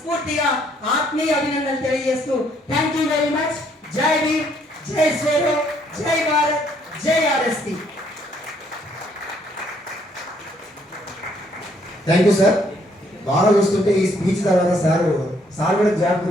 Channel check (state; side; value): normal; both; correlation 0.67